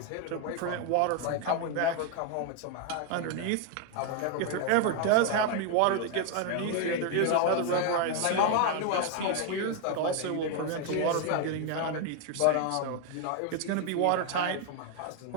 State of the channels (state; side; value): different; both; correlation 0.01